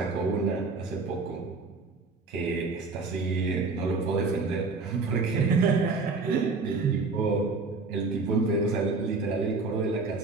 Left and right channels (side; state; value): left; quieter; 4.0 dB